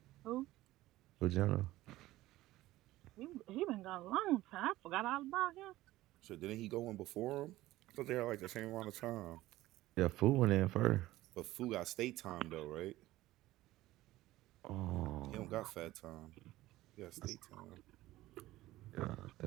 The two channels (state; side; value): quieter; left; 16.7 dB